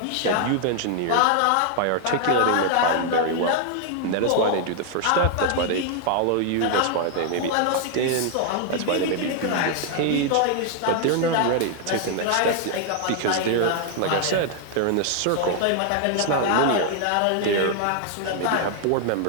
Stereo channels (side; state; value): both; different; correlation 0.00